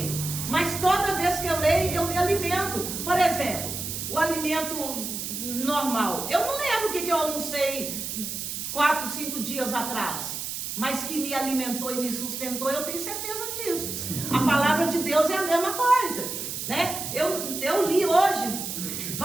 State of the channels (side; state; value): right; noise; hiss, 5 dB below the sound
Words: mas toda vez que eu leio, eu me alimento. Por exemplo, o alimento normal. Eu não lembro o que eu almocei 4, 5 dias atrás, mas que me alimentou e me sustentou, eu tenho certeza disso. A palavra de Deus é a mesma coisa, né? Eu li hoje